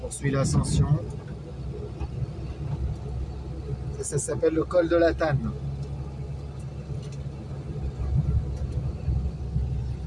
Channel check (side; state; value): both; identical; correlation 1.00